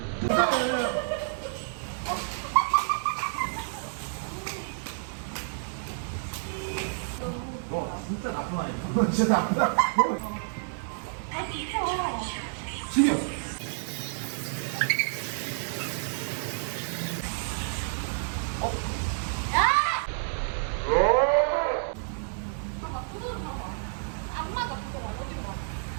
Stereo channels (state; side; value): silent; left; digital silence